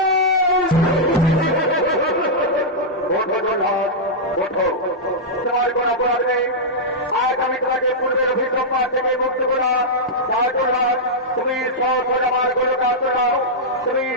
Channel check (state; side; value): normal; both; correlation -0.08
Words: ওঠো জগন্নাথ, ওঠো, তোমার কোন অপরাধ নেই। আজ আমি তোমাকে পূর্বের অভিসম্পাদ থেকে মুক্ত করলাম। তুমি সহজ আমার গোলকে আশ্রয় নাও, তুমি